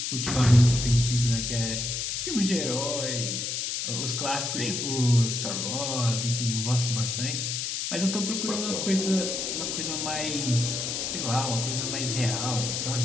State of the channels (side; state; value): left; noise; hiss, 2 dB below the sound